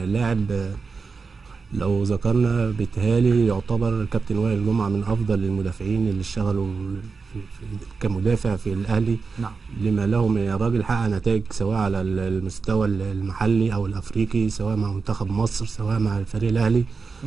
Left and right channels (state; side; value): quieter; left; 4.7 dB